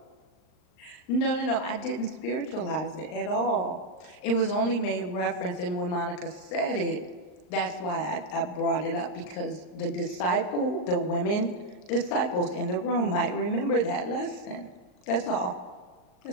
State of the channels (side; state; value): right; late; 39 ms